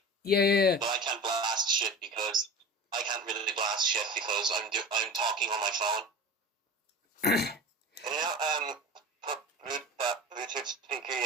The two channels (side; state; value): both; normal; correlation 0.34